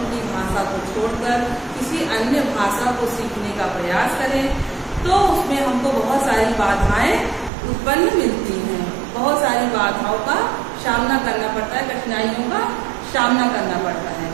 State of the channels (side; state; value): left; drops out; at 7.5 s